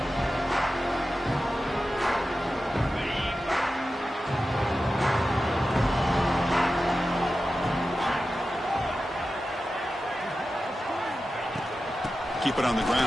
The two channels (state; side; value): normal; both; correlation 0.93